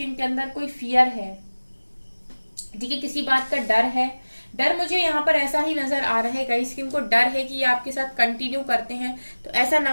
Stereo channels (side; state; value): both; inverted; correlation -1.00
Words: इनके अंदर कोई फियर है, ठीक है, किसी बात का डर है। डर मुझे यहाँ पर ऐसा ही नजर आ रहा है गाइस कि इनको डर है कि ये आपके साथ कंटिन्यू करते हैं तो ऐसा ना